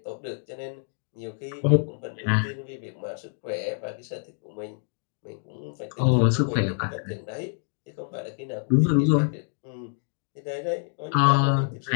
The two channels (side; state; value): right; silent; digital silence